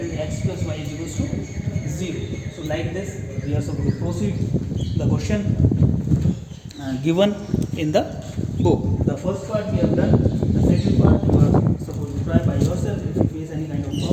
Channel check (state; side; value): identical; both; correlation 1.00